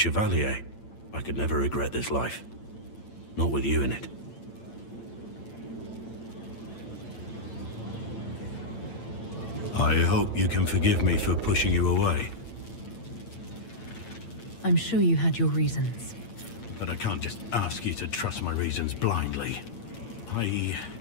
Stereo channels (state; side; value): late; right; 8.8 ms